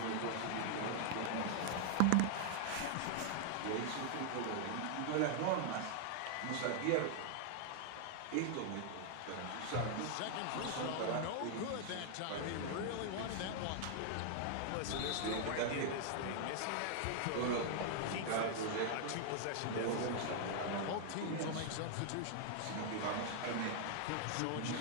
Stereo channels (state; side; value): different; both; correlation -0.01